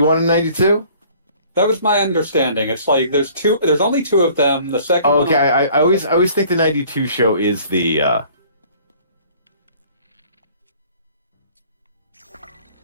and 92? That was my understanding. It's like there's two. There's only two of them. The second. Oh, one- okay. I always think the 92 show is the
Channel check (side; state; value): both; inverted; correlation -0.54